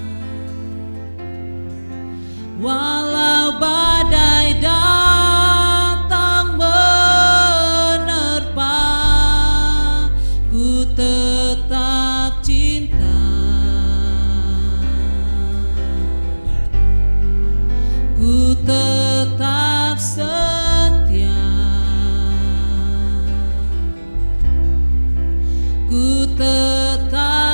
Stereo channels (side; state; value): both; inverted; correlation -1.00